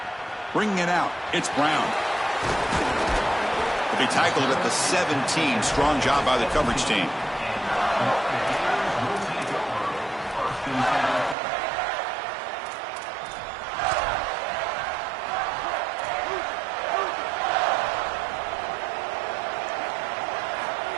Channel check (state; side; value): drops out; left; at 11.4 s